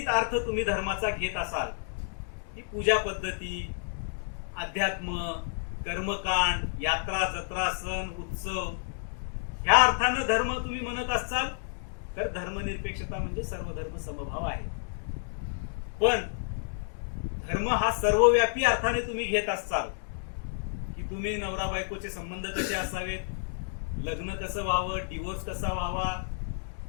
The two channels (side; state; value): right; silent; digital silence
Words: अर्थ तुम्ही धर्माचा घेत असाल, की पूजा पद्धती, अध्यात्म, कर्मकांड, यात्रा, जत्रा, सण, उत्सव, ह्या अर्थानं धर्म तुम्ही म्हणत असाल तर धर्मनिरपेक्षता म्हणजे सर्व धर्म समभाव आहे. पण धर्म हा सर्वव्यापी अर्थाने तुम्ही घेत असाल, की तुम्ही नवरा बायकोचे संबंध कसे असावेत, लग्न कसं व्हावं, डिवोर्स कसा व्हावा,